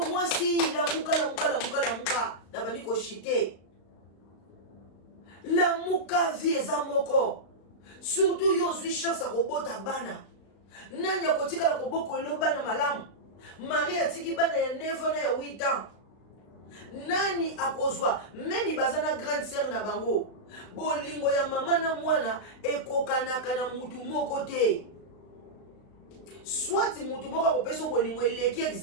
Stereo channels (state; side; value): late; right; 35 ms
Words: mwasi lamuka na bandi koshite lamuka vie eza moko surtout yo ozwi chance akobota bana nani akotikala koboko elo bana malamu Marie atiki bana ya 9 ans na ya 8 ans nani akozwa memi baza na grande sœur na bango bolingo ya mama na mwana ekokanaka na mutu moko te soit mutu moko akopesa bolingo eleki